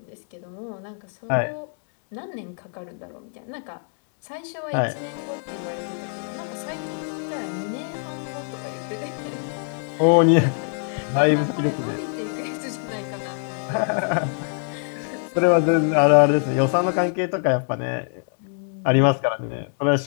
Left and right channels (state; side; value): silent; right; 58 dB below the other